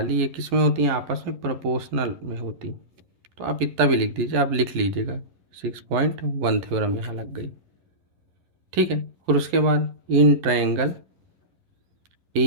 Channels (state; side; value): late; left; 11 ms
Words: ये किस में होती हैं, आपस में प्रोपोर्शनल में होती। तो आप इतना भी लिख दीजिए, आप लिख लीजिएगा 6.1 थ्योरम यहाँ लग गई, ठीक है। और उसके बाद इन ट्रायंगल